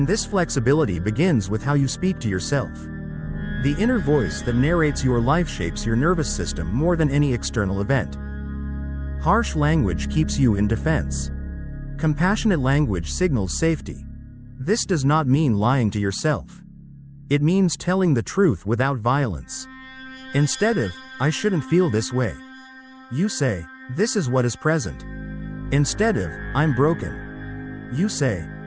this flexibility begins with how you speak to yourself. The inner voice that narrates your life shapes your nervous system more than any external event. Harsh language keeps you in defense. Compassionate language signals safety. This does not mean lying to yourself. It means telling the truth without violence. Instead of, I shouldn't feel this way, you say, this is what is present. Instead of, I'm broken, you say,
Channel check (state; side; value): identical; both; correlation 1.00